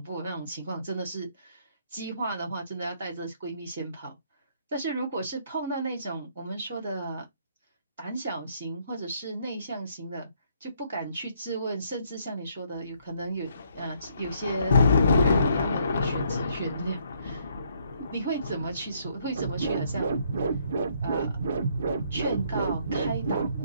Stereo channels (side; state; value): both; inverted; correlation -0.68